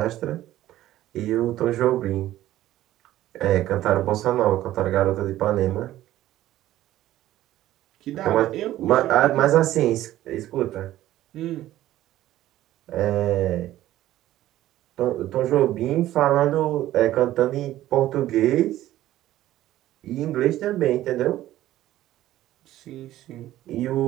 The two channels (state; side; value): quieter; left; 14.2 dB